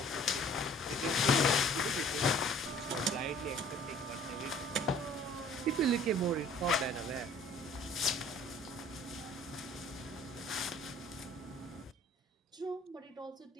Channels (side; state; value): both; normal; correlation 0.52